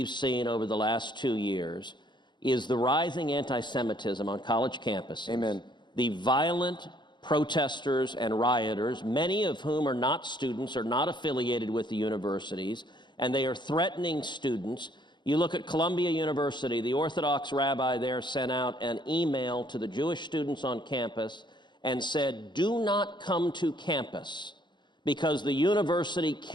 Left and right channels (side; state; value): right; late; 0.22 ms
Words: seen over the last 2 years is the rising anti-Semitism on college campuses. Amen. The violent protesters and rioters, many of whom are not students, are not affiliated with the universities, and they are threatening students. You look at Columbia University, the Orthodox rabbi there sent out an email to the Jewish students on campus and said, do not come to campus because the university